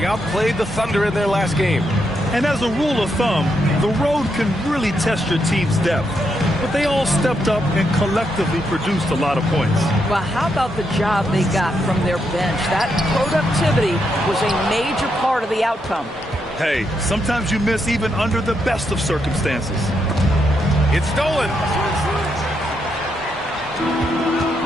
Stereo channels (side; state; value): both; normal; correlation 0.80